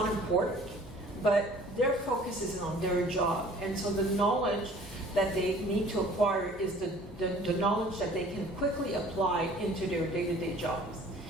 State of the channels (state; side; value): normal; both; correlation 0.51